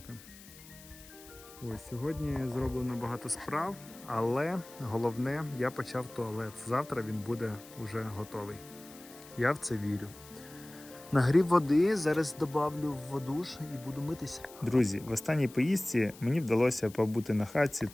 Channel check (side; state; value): left; noise; hiss, 20 dB below the sound